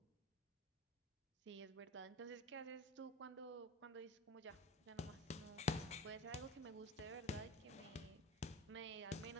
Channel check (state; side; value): normal; both; correlation 0.33